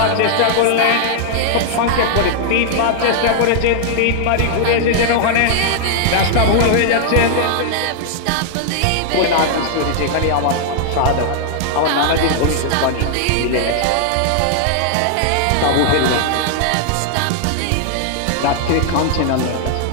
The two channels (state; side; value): different; both; correlation -0.01